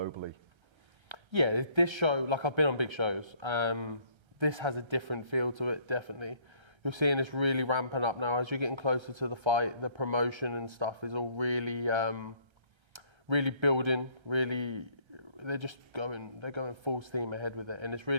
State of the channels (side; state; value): left; late; 1.3 ms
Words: Yeah, this show, like I've been on big shows, this has a different feel to it, definitely. You're seeing this really ramping up now as you're getting closer to the fight. The promotion and stuff is all really, really building, they're going full steam ahead with it. And it's